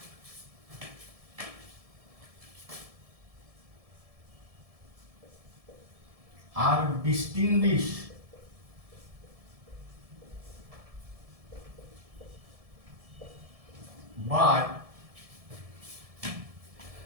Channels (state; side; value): late; left; 1.7 ms